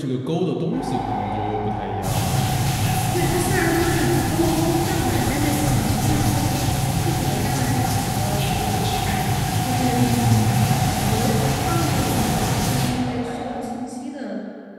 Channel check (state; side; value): identical; both; correlation 1.00